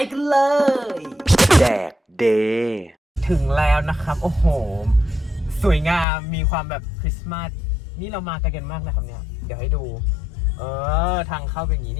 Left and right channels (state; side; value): drops out; right; at 6.1 s